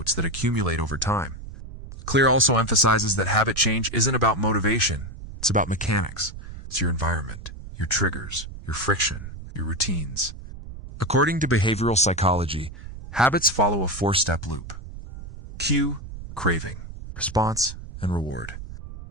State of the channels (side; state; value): right; noise; rumble, 12 dB below the sound